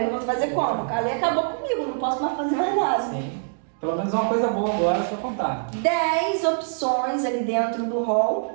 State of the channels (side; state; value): left; silent; digital silence